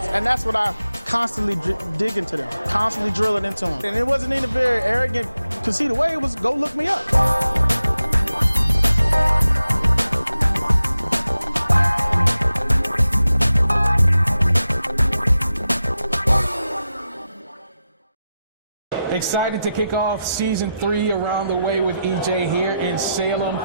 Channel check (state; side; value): inverted; both; correlation -0.90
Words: And that's what I constantly dig into them, constantly drill it into them. And it wasn't even very arrogant to see the way it was, go look me up. Excited to kick off season 3 around the way with EJ here in Salem